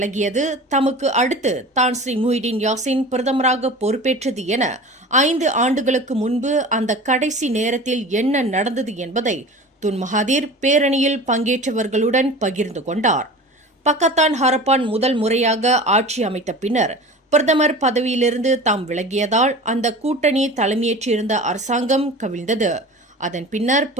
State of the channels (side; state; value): both; normal; correlation 0.37